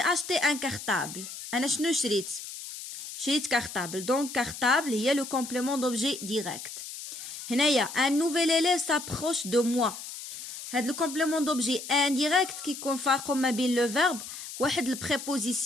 اشتي ان كارطابل. انا شنو شريت كارطابل. دونك كارطابل هي لو كومبليمون دوبجي ديريكت. هنايا ان نوفيل اليف سابروش دو موا. هاد لو كومبليمون دوبجي انديريكت كيكون فارقو ما بين لو فيرب واحد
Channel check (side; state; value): left; noise; hiss, 10 dB below the sound